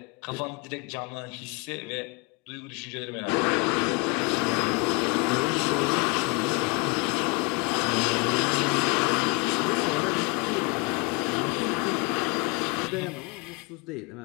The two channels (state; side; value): quieter; right; 29.2 dB